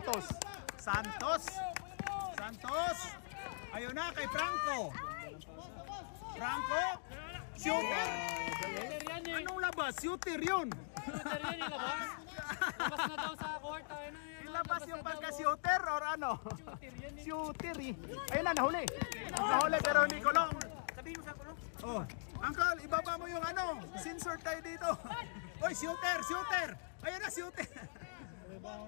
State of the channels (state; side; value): silent; right; digital silence